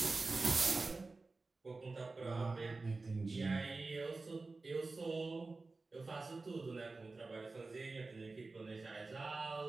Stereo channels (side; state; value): left; quieter; 3.6 dB